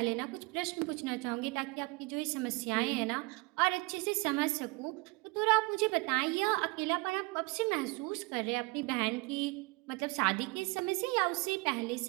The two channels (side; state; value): left; quieter; 26.8 dB